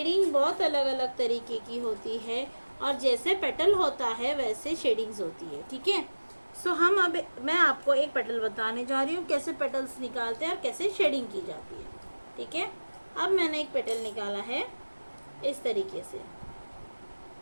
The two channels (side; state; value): both; inverted; correlation -1.00